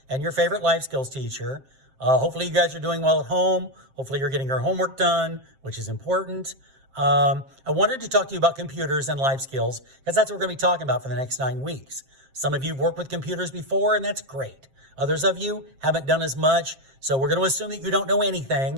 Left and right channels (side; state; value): left; late; 7.5 ms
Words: and your favorite life skills teacher. Hopefully you guys are doing well at home. Hopefully you're getting your homework done, which is important. I wanted to talk to you about computers and life skills because that's what we're going to be talking about for the next 9 weeks. Some of you have worked with computers before, and that's great. Others of you haven't done as much, so we're going to assume that you don't know